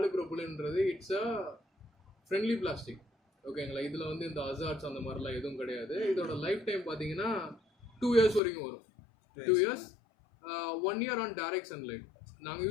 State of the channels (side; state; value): right; drops out; at 8.4 s